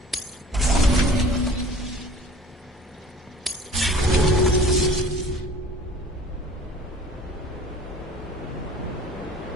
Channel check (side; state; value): both; normal; correlation 0.47